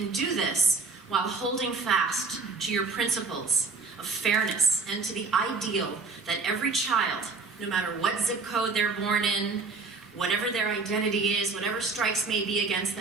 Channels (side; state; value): left; quieter; 4.2 dB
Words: do this while holding fast to your principles of fairness and to the ideal that every child, no matter what zip code they're born in, whatever their identity is, whatever strikes may be against